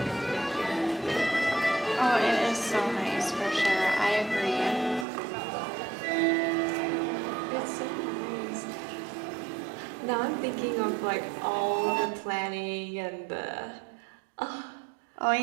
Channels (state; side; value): drops out; left; at 5.1 s